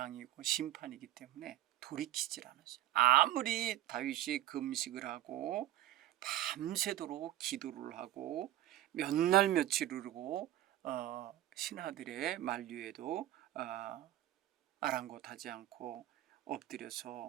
심판이기 때문에 돌이키질 않았어요. 아무리 다윗이 금식을 하고 밤새도록 기도를 하고 몇 날 며칠을 하고 신하들의 만류에도 아랑곳하지 않고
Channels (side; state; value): left; quieter; 13.9 dB